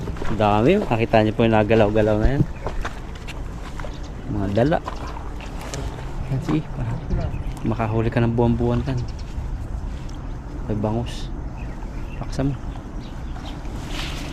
ang dami. Nakita niyo po yung nagalaw-galaw na yan. Mga dala. Yan si, makahuli ka ng buwan-buwan tan. May bangus. Paksa mo.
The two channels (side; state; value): both; identical; correlation 1.00